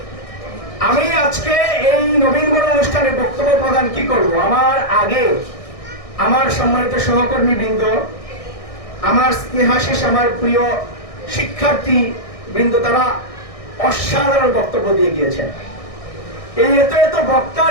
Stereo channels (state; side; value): late; right; 1.6 ms